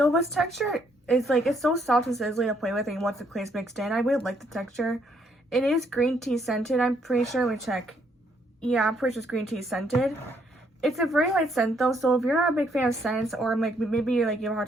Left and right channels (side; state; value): both; normal; correlation 0.70